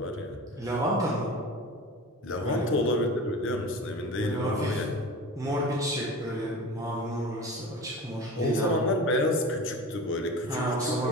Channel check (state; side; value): normal; both; correlation 0.34